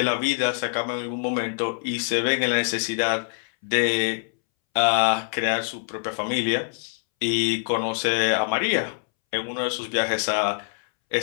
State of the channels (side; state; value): right; silent; 62 dB below the other